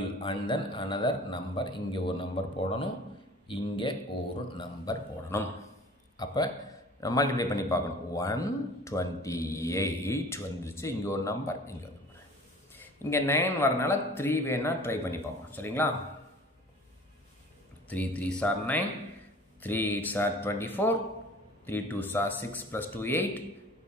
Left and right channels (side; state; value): both; normal; correlation 0.46